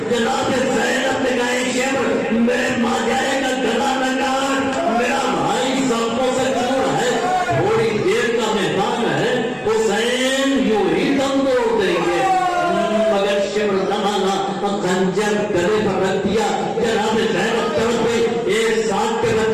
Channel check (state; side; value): identical; both; correlation 1.00